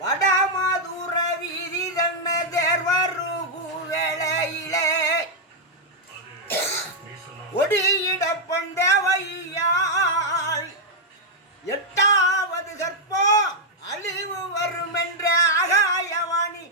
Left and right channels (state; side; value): normal; both; correlation -0.03